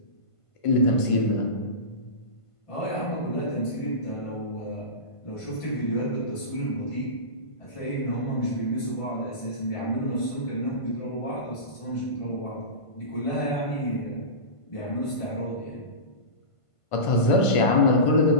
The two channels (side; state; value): right; late; 1.5 ms